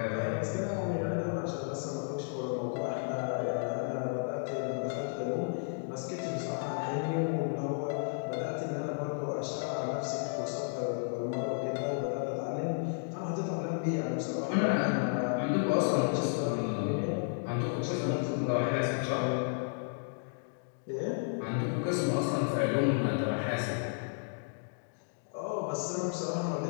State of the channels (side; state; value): right; silent; digital silence